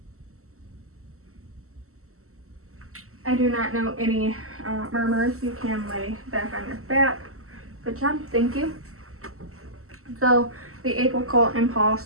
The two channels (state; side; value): late; left; 0.63 ms